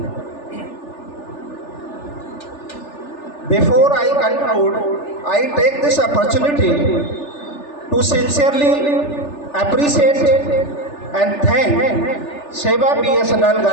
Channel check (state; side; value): late; right; 3.4 ms